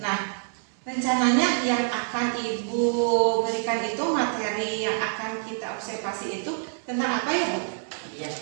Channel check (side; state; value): left; silent; 61 dB below the other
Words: Nah, rencananya yang akan Ibu berikan itu materi yang akan kita observasi itu tentang apa ya Bu? Iya,